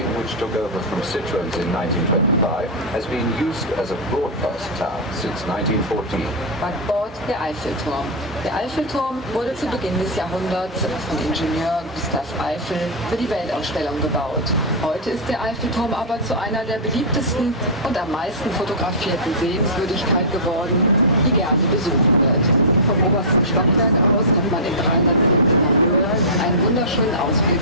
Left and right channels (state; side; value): normal; both; correlation -0.11